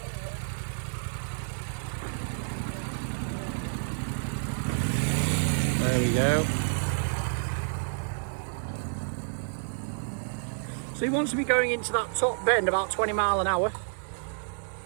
There we go. So he wants to be going into that top bend about 20 miles an hour.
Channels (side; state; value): left; silent; 58 dB below the other